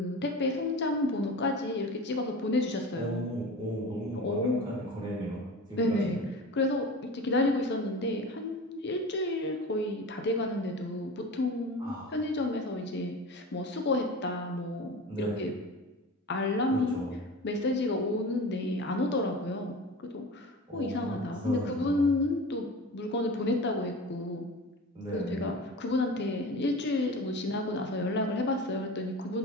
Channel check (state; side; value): normal; both; correlation 0.33